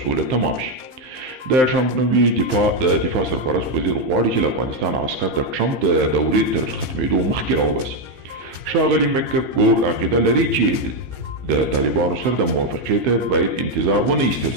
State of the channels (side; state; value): left; late; 15 ms